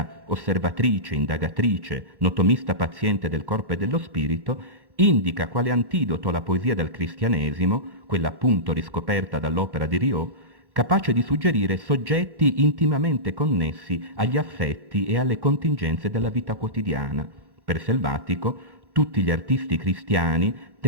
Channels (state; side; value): late; left; 1.1 ms